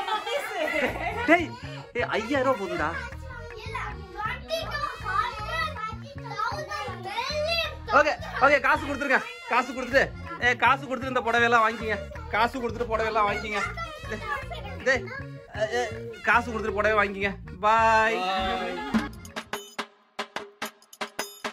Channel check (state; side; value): identical; both; correlation 1.00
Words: டேய் 5000 ரூபா போதுடா. ஓகே ஓகே, காசு கொடுத்துருங்க. காசு கொடுத்துட்டு இந்த புடவையெல்லாம் வாங்கிக்கிங்க. காசு கொடுத்துட்டு புடவையெல்லாம் வாங்கிக்கிங்க. காசு கொடுத்துட்டு புடவை வாங்கிக்கிங்க. பாய்.